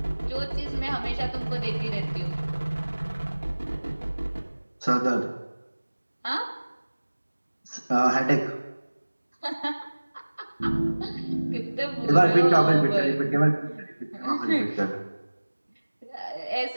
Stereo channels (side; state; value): both; inverted; correlation -1.00